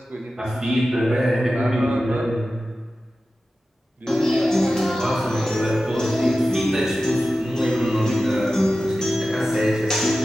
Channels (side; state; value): both; normal; correlation 0.94